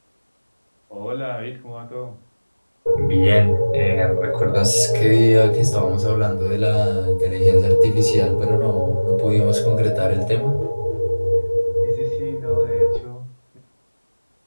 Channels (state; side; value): inverted; both; correlation -1.00